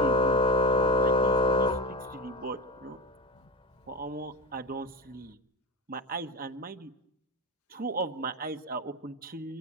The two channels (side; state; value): both; normal; correlation 0.23